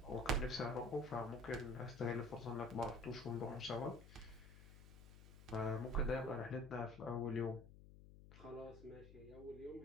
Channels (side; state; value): left; noise; hum, 17 dB below the sound